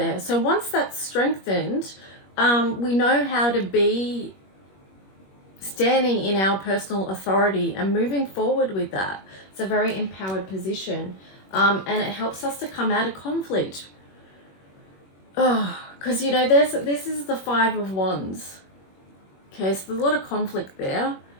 So once that's strengthened, we know how to be standing in our personal authority and moving forward with that. It's a very empowered position. And it helps us to come out of conflict. Because, you know, this is the Five of Wands. Okay, so there's a lot of conflict there.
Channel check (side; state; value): right; late; 21 ms